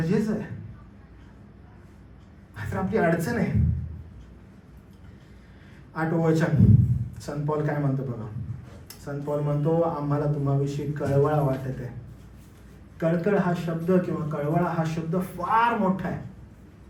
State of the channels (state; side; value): identical; both; correlation 1.00